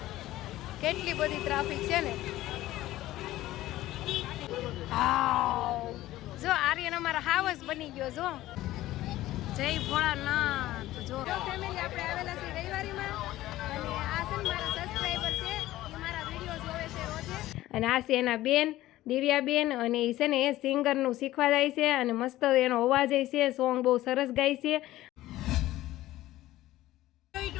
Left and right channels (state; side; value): quieter; right; 15.6 dB